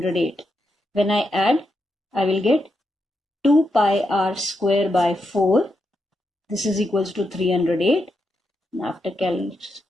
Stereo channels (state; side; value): normal; both; correlation 0.84